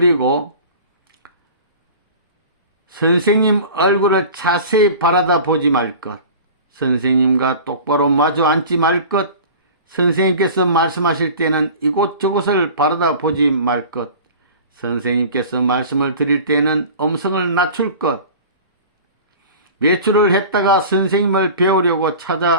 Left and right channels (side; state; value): both; inverted; correlation -0.39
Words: 선생님 얼굴을 자세히 바라다 보지 말 것. 선생님과 똑바로 마주 앉지 말 것. 선생님께서 말씀하실 때는 이곳저곳을 바라다 보지 말 것. 선생님께서 말씀을 드릴 때는 음성을 낮출 것. 외출을 했다가 선생님을 배우려고